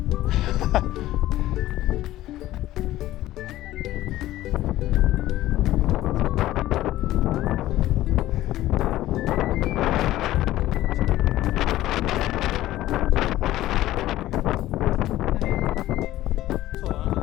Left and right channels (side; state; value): right; quieter; 15.1 dB